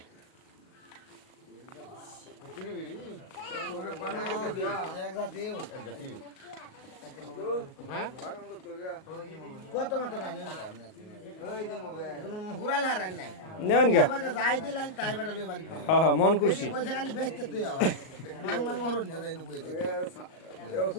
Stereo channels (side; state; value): right; late; 38 ms